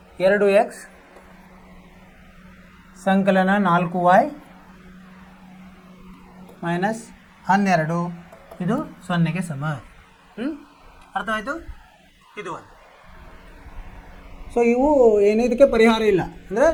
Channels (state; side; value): identical; both; correlation 1.00